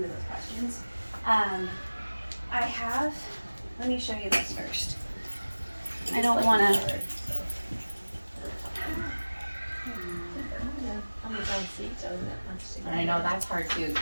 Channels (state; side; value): inverted; both; correlation -1.00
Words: those questions. Let me show you this first. I don't want to. And I know that's hard too.